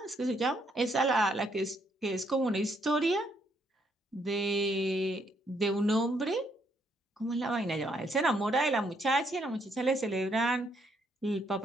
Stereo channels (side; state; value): both; normal; correlation 0.72